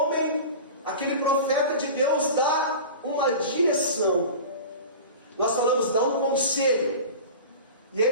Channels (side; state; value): both; inverted; correlation -0.34